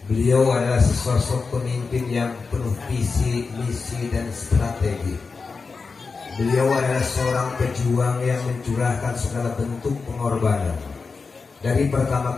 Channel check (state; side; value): quieter; right; 4.6 dB